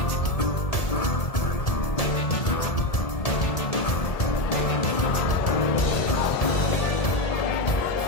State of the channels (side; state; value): right; late; 1.7 ms